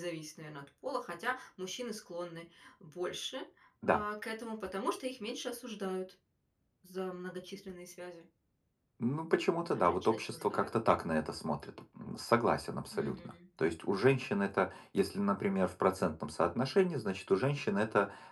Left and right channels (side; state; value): both; identical; correlation 1.00